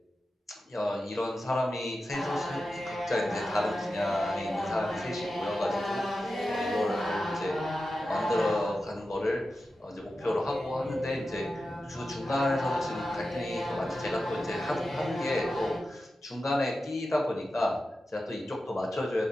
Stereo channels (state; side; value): normal; both; correlation 0.92